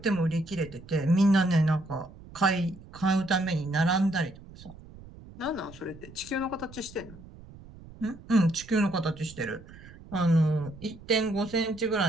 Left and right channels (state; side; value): noise; right; rumble, 19 dB below the sound